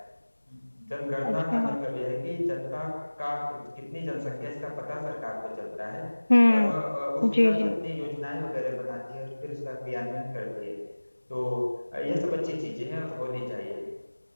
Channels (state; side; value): inverted; both; correlation -1.00